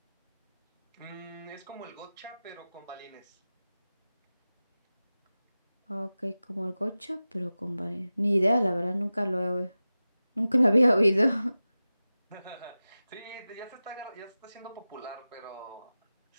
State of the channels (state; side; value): inverted; both; correlation -0.96